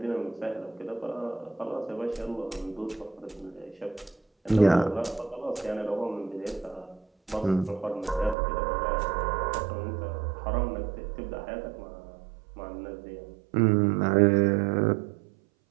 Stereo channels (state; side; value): drops out; left; at 8.3 s